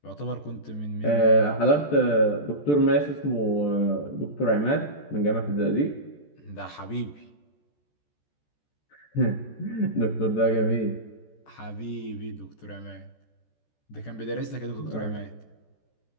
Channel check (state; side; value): late; right; 14 ms